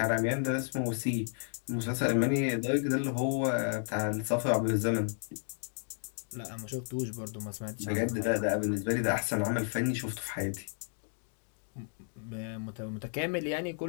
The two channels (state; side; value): silent; right; 56 dB below the other